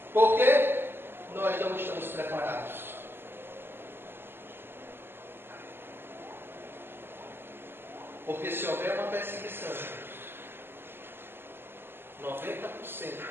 Por quê? Nós não estamos preparados. Porque se houver uma perseguição, 90%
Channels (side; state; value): left; late; 0.11 ms